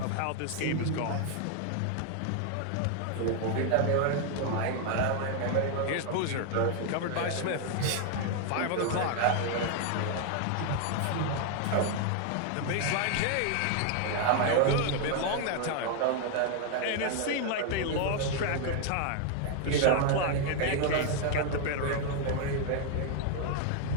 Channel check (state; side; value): different; both; correlation 0.00